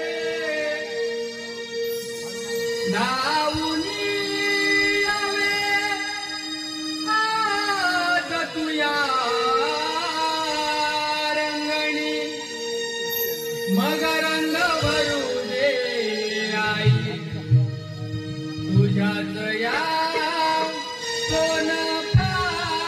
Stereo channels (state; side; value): identical; both; correlation 1.00